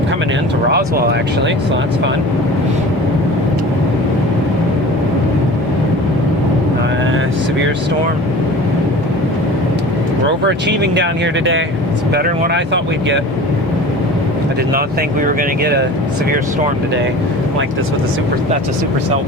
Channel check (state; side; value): normal; both; correlation 0.39